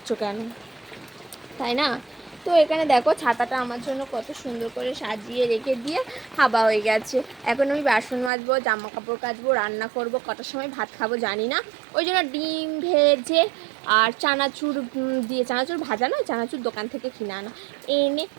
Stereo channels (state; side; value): drops out; left; at 8.3 s